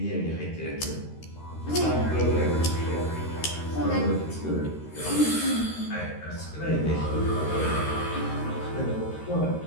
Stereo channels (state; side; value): late; right; 13 ms